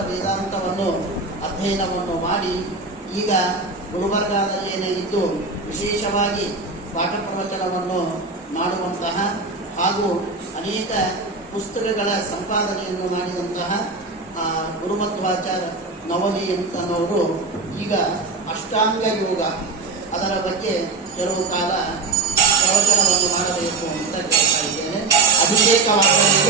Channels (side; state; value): left; quieter; 4.0 dB